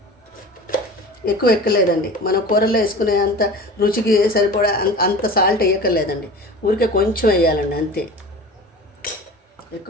ఎక్కువ ఎక్కలేదండి. మనం కూరలో వేసుకునే అంత రుచికి సరిపడా అంత సాల్ట్ వేయక్కర్లేదండి. ఊరికే కొంచెం వేయాలండి అంతే,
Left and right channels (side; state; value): both; normal; correlation 0.36